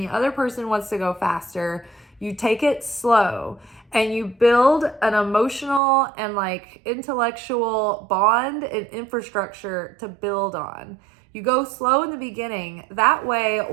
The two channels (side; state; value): left; drops out; at 5.8 s